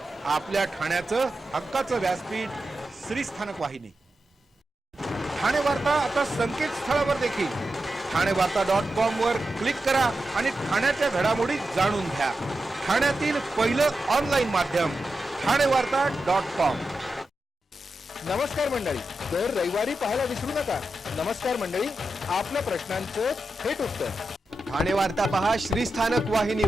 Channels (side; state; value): both; normal; correlation 0.90